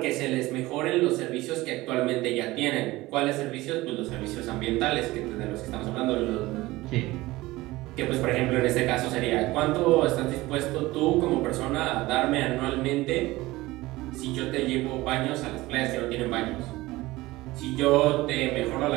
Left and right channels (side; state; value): left; quieter; 19.2 dB